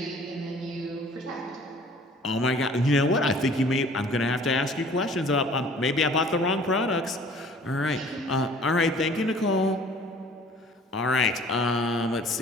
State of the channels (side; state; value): both; normal; correlation 0.51